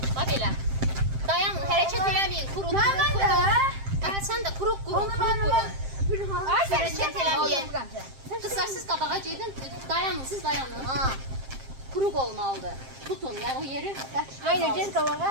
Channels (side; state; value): left; late; 7.6 ms